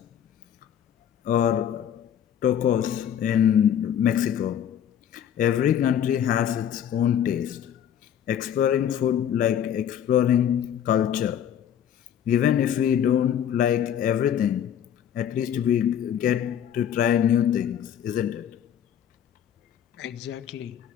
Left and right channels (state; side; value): quieter; right; 9.5 dB